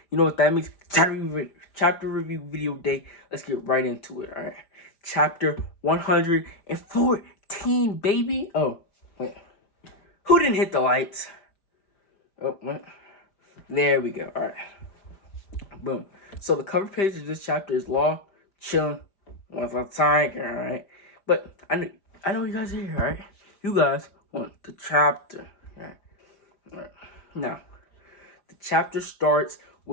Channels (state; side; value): late; right; 5.0 ms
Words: You know what that means? Chapter review video day. Let's get right into it. All right, chapter 114, baby. Oh wait, who didn't hit the lights? Oh wait, there we go. All right, boom. So the cover page of this chapter is Law chilling with a tiger. All right, but I know you guys are here. All right, you guys want the chapter. All right. Now, the chapter starts